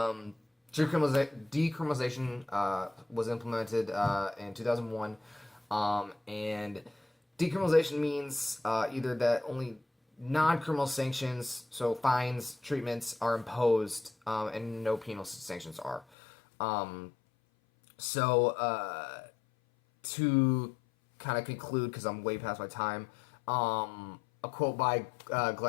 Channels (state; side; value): drops out; right; at 16.1 s